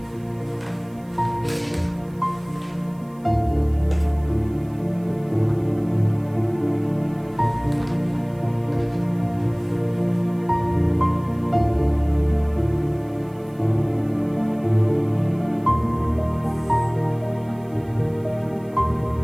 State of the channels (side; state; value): right; noise; hiss, 30 dB below the sound